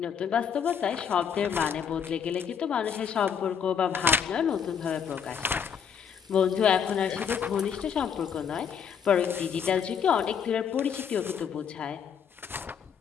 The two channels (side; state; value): right; quieter; 7.4 dB